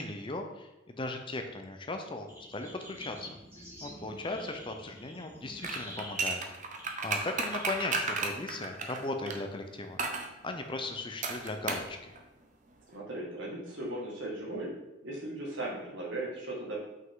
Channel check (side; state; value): both; normal; correlation 0.24